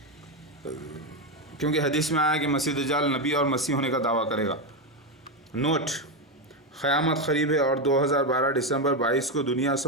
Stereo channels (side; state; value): both; normal; correlation 0.10